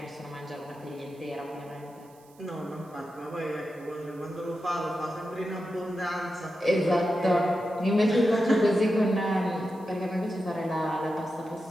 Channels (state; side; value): noise; right; hiss, 29 dB below the sound